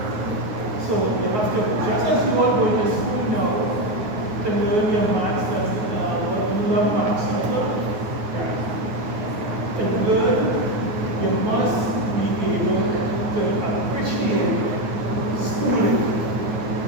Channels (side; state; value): left; late; 9.4 ms